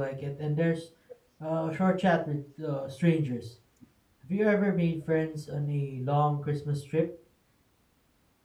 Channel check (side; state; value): both; identical; correlation 1.00